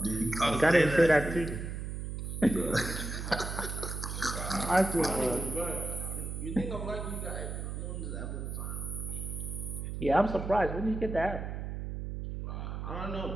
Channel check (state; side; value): noise; right; hum, 5 dB below the sound